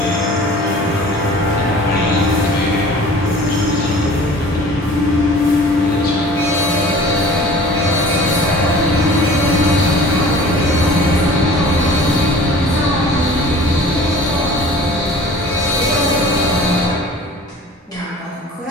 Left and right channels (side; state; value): both; normal; correlation 0.45